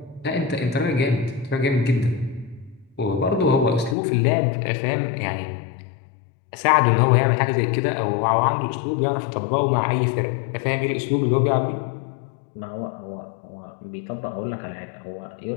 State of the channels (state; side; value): drops out; right; at 4.0 s